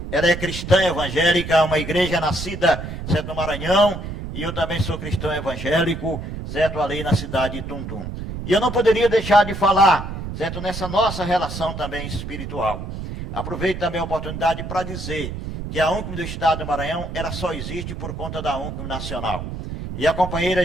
Ela é cristã evangélica, uma igreja nascida, certo, no Maranhão, e eu também sou cristão evangélico, certo, ali na cidade de Tuntum. E eu não poderia deixar de falar, certo, nessa nossa relação também espiritual. Aproveito também a oportunidade para dizer que a UNCM do Estado do Maranhão, ela só existe por conta da UNCM Nacional. E a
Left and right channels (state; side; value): noise; right; rumble, 7 dB below the sound